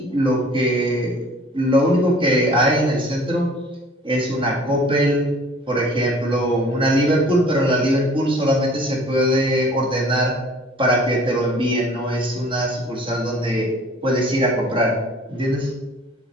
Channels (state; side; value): normal; both; correlation 0.50